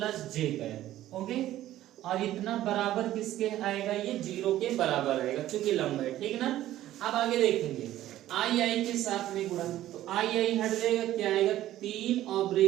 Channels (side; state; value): left; quieter; 13.8 dB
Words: j कैप, ओके, और इतना बराबर किसके आएगा, ये 0 के बराबर आएगा क्योंकि लंब है, ठीक ना। अब आगे देखेंगे आई के साथ में गुणा, तो आई हट जाएगा, क्या आएगा 3 और